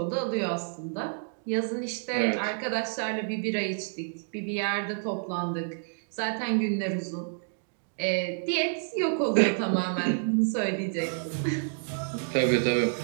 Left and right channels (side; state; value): left; silent; digital silence